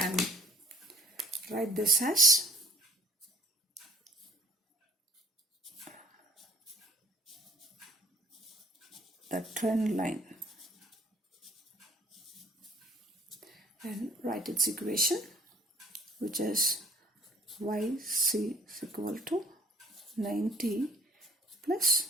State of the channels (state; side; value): normal; both; correlation 0.54